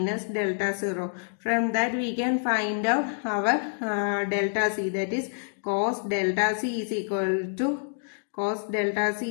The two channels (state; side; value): silent; right; digital silence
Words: delta 0. From that we can find out our delta C, that is cos delta C is equal to